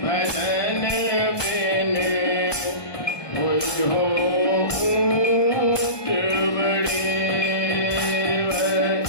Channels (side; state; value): right; late; 1.2 ms